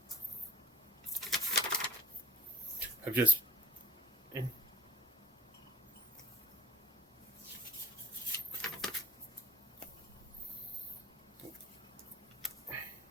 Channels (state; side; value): normal; both; correlation 0.50